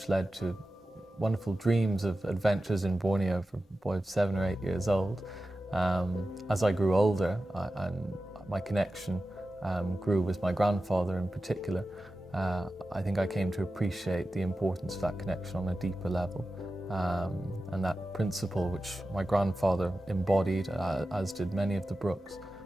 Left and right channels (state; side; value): normal; both; correlation 0.93